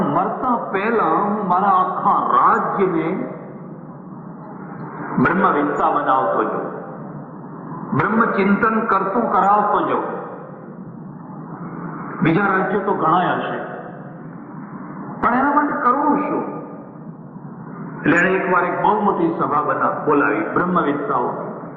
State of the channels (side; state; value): both; identical; correlation 1.00